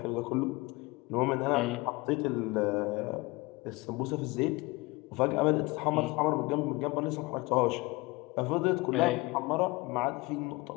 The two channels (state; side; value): quieter; right; 23.6 dB